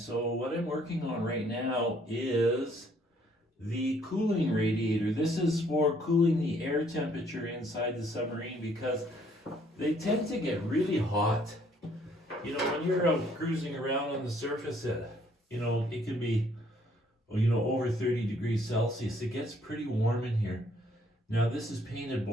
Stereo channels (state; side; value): normal; both; correlation 0.64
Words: what I'm working on right now is the cooling radiator. This is for cooling the air temperature inside the submarine because they tend to get really hot. When you're out cruising around on the surface, it can be, over 30 degrees Celsius. It gets pretty warm in here. Now this is painted